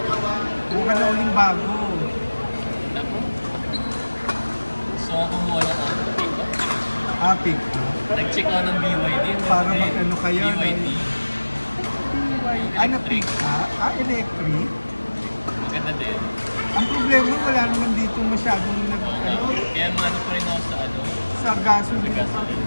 Buka na uling bago. Naku. Gusto ko kumuha ng pick up. Pick. Nag-check ako ng BYD. Para mag-ano kayo, no? BYD. Ano pick electric? Maganda din. Ang problema, wala naman dito masyadong Kaya ano pa rin ako sa sa gasoline.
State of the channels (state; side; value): inverted; both; correlation -1.00